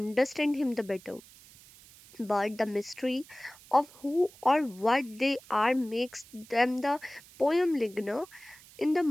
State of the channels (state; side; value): noise; right; hiss, 23 dB below the sound